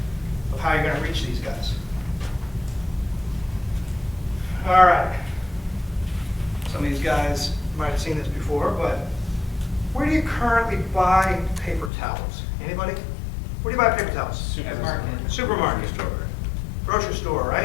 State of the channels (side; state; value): right; drops out; at 11.9 s